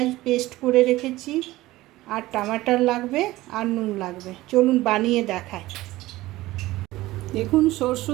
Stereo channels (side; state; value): left; quieter; 17.7 dB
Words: পেস্ট করে রেখেছি, আর টমাটার লাগবে, আর নুন লাগবে। চলুন বানিয়ে দেখাই। দেখুন